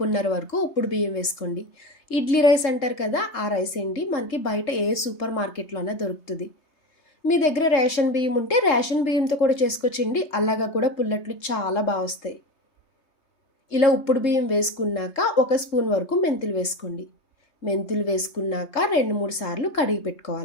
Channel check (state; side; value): late; right; 3.3 ms